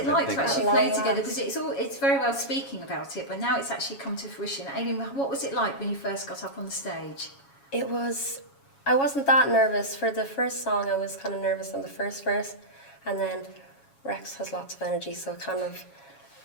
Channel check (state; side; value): late; right; 7.2 ms